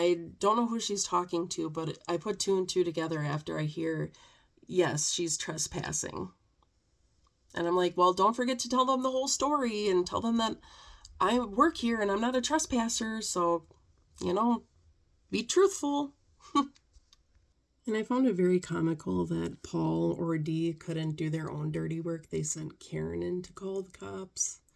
don't know who she's talking to, but I put 2 and 2 together after I hear, yes, she's trespassing. And I'm like, well, don't forget to tell them the whole story and tell them that I work here and I'm not a trespasser, so, be truthful. And I found it very comical that Paul or Dee couldn't do their own dirty work. They sent Karen in to call the cops.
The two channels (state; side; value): identical; both; correlation 1.00